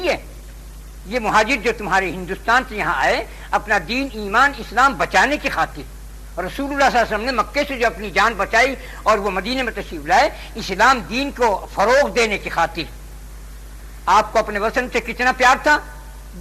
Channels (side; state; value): both; identical; correlation 1.00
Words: ہے، یہ مہاجر جو تمہارے ہندوستان سے یہاں آئے اپنا دین، ایمان، اسلام بچانے کی خاطر، رسول اللہ صلی اللہ علیہ وسلم نے مکے سے جو اپنی جان بچائی اور وہ مدینے میں تشریف لائے اسلام دین کو فروغ دینے کی خاطر۔ آپ کو اپنے وطن سے کتنا پیار تھا،